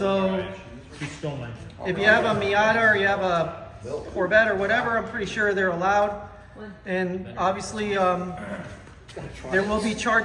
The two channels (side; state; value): both; identical; correlation 1.00